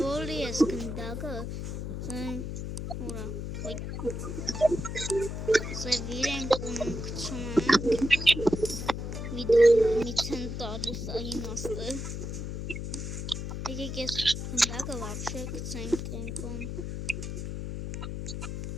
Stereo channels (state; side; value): noise; left; hum, 5 dB below the sound